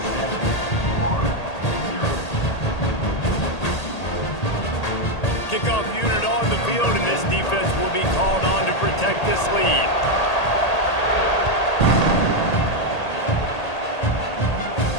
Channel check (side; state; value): right; late; 1.8 ms